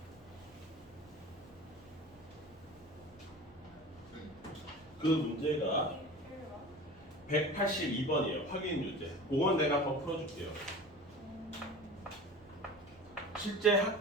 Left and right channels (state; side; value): normal; both; correlation 0.37